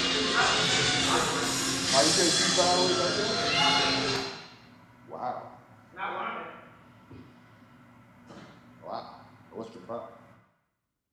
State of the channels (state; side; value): identical; both; correlation 1.00